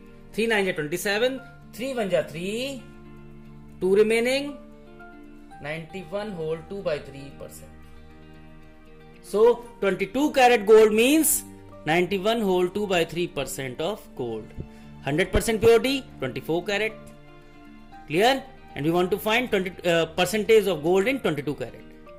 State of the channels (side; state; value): both; identical; correlation 1.00